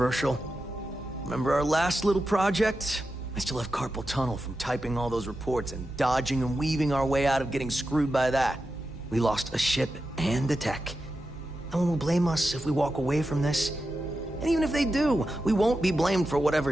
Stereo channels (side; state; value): both; normal; correlation 0.90